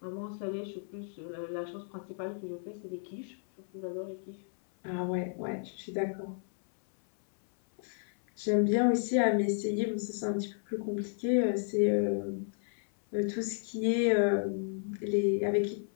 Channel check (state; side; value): silent; right; 56 dB below the other